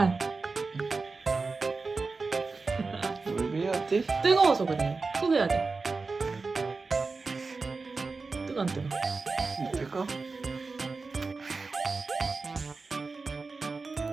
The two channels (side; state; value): left; quieter; 4.1 dB